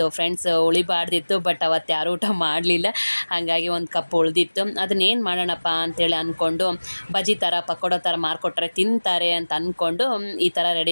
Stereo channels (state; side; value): inverted; both; correlation -1.00